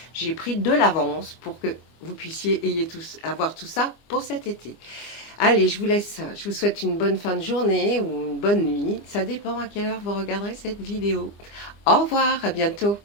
j'ai pris de l'avance pour que vous puissiez avoir tout ça pour cet été. Allez, je vous laisse. Je vous souhaite une bonne fin de journée ou une bonne nuit. Ça dépend à quelle heure vous regarderez cette vidéo. Au revoir, à bientôt.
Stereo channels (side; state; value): right; late; 25 ms